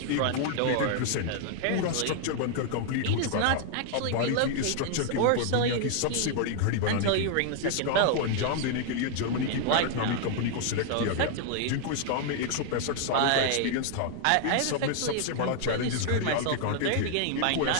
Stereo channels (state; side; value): different; both; correlation 0.00